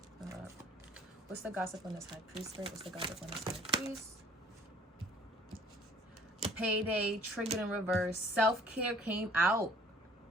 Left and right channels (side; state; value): both; normal; correlation 0.55